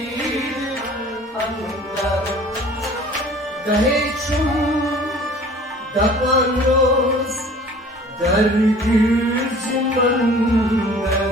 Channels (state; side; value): normal; both; correlation 0.48